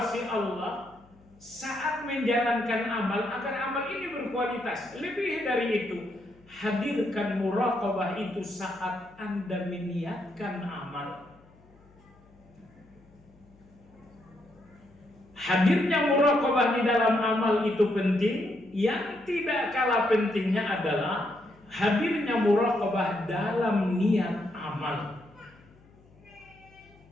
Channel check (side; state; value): left; noise; hum, 27 dB below the sound